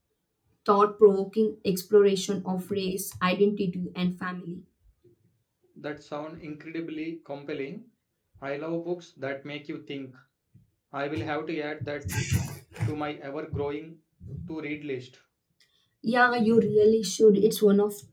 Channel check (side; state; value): both; identical; correlation 1.00